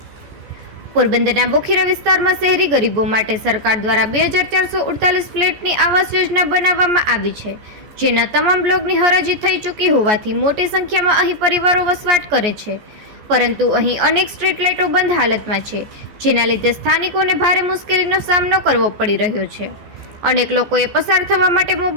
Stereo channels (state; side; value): late; left; 14 ms